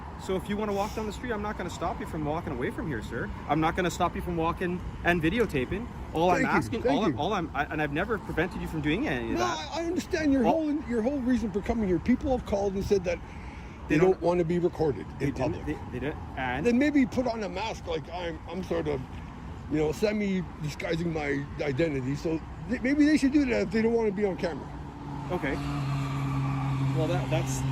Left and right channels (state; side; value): identical; both; correlation 1.00